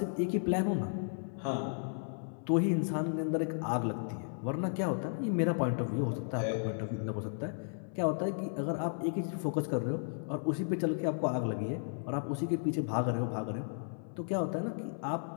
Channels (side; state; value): right; silent; 55 dB below the other